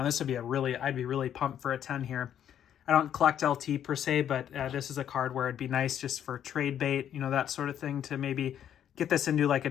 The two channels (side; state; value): right; quieter; 9.9 dB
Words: This would be I'd be really pumped for a 10 here. I don't collect LT per se, but this is a card where it'd be nice just for trade bait, that sort of thing, to maybe get this into like a